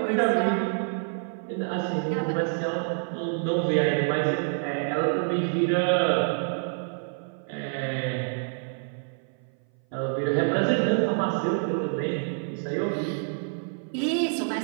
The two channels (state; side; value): silent; left; 57 dB below the other